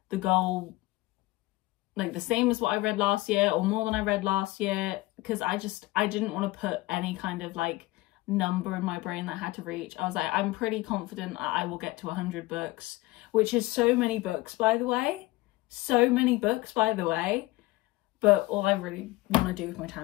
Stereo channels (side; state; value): right; quieter; 20.0 dB